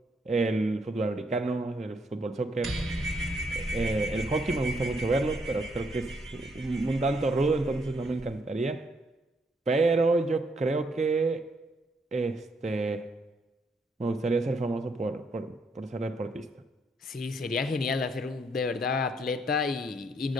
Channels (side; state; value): both; normal; correlation 0.73